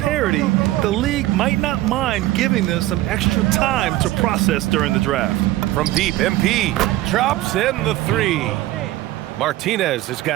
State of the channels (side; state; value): left; quieter; 16.2 dB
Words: the league might not mind giving them some extra time to process during the draft. From deep, MP drops in the 3. Martinez has